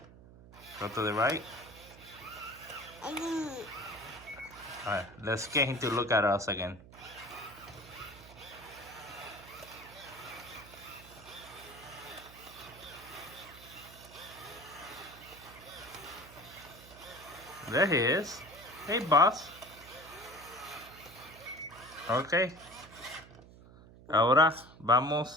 Go to the right. Alright, let's get him to look at us again. There he is. Hey, boss. Okay. Ahora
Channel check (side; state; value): right; noise; hum, 19 dB below the sound